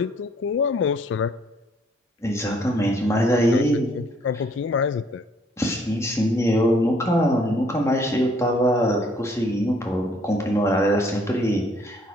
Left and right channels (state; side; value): normal; both; correlation 0.63